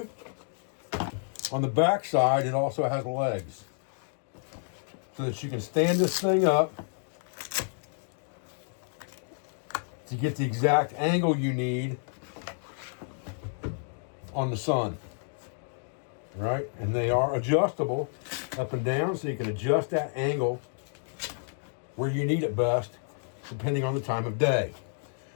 On the back side, it also has legs so that you can stand this thing up to get the exact angle you need on the sun, right? And they are adjustable up and down, so you can adjust that angle where you need it best, depending on the time of day.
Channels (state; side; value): silent; right; digital silence